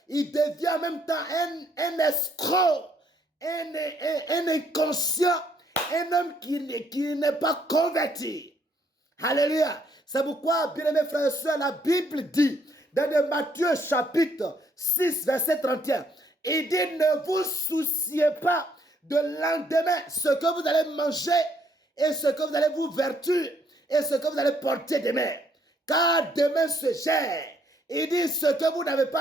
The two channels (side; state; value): both; normal; correlation 0.69